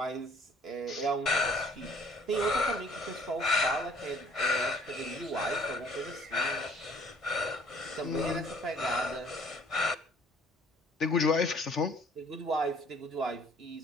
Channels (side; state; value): both; normal; correlation 0.56